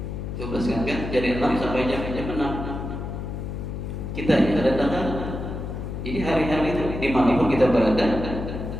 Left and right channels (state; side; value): noise; left; hum, 6 dB below the sound